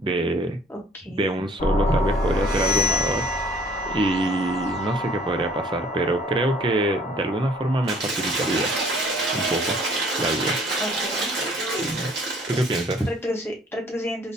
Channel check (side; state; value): both; normal; correlation 0.56